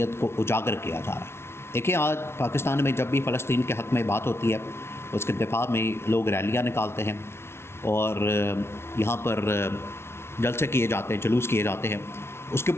کو اجاگر کیا جا رہا ہے۔ دیکھیں، آج پاکستان میں جب بھی فلسطین کے حق میں بات ہوتی ہے، اس کے دفاع میں لوگ ریلیاں نکالتے ہیں اور یہاں پر جلسے کیے جاتے ہیں، جلوس کیے جاتے ہیں، اس کے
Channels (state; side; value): late; right; 0.12 ms